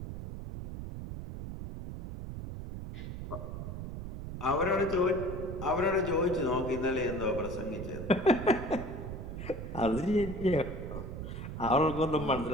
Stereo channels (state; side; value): noise; right; rumble, 7 dB below the sound